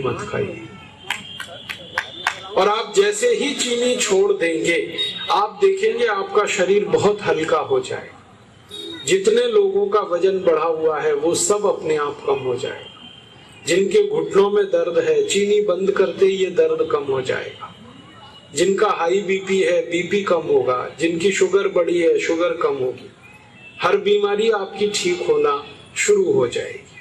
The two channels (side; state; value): both; identical; correlation 1.00